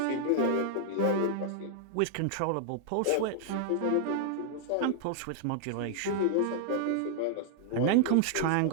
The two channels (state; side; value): different; both; correlation -0.01